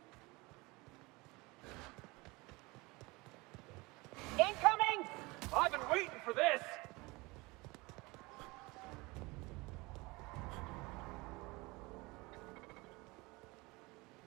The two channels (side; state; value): left; quieter; 24.0 dB